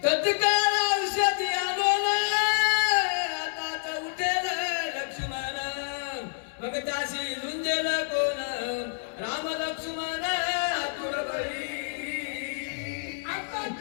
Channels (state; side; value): silent; right; digital silence